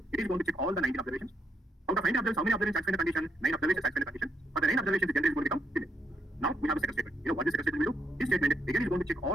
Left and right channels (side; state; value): both; normal; correlation 0.76